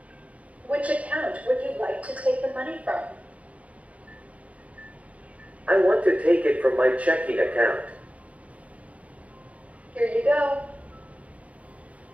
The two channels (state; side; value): late; left; 0.067 ms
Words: Which account would you like to take the money from? I want to take it from my checking account. Here you go.